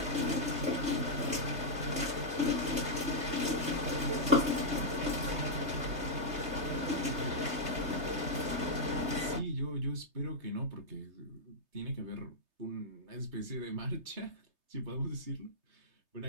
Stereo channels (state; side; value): late; left; 3.3 ms